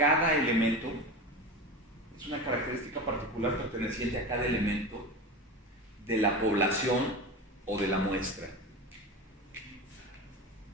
elemento. Es una característica particular perteneciente a cada elemento de la población o de la muestra.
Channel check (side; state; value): both; normal; correlation 0.27